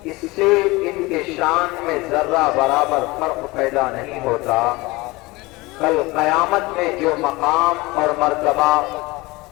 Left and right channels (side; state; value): right; quieter; 22.3 dB